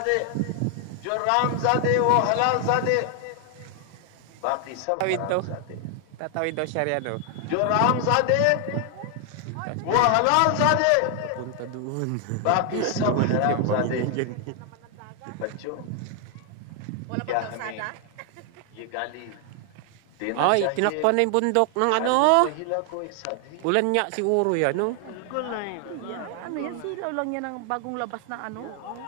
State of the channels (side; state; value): both; different; correlation 0.00